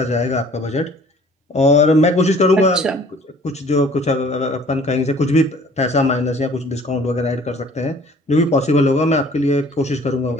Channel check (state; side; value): normal; both; correlation 0.52